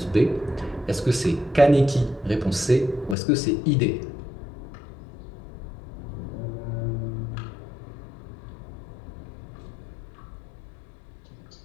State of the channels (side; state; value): right; drops out; at 3.2 s